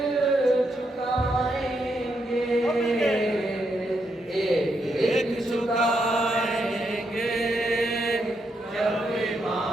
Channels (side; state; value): both; normal; correlation 0.80